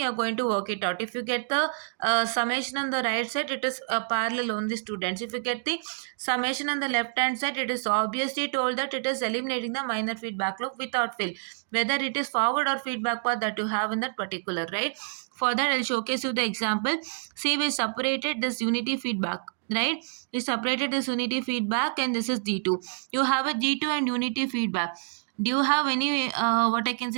are going to work it out. If you get the summation on the right side, it is parallel only, students. If you get the summation on the left hand side, it is obviously told that it is eliminating the minor feedback loop without fail, whether it is forward or feedback path that you have in that particular, right? For that, I'll showcase you the example. See, we separated this unity feedback, right? We separated this unity feedback, and this is G2. You have a G2 and unity feedback. Do you have any, what I can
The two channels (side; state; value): left; silent; digital silence